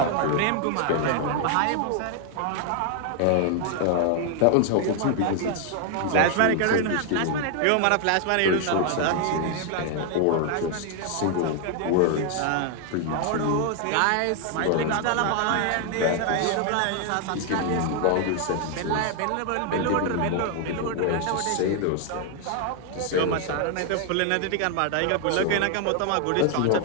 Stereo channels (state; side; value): different; both; correlation 0.00